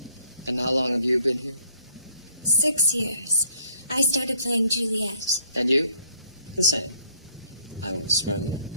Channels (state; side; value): inverted; both; correlation -0.64